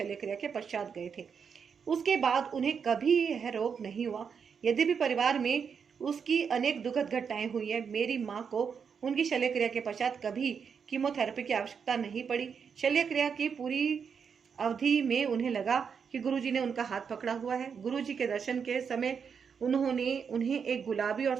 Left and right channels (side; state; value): left; quieter; 6.5 dB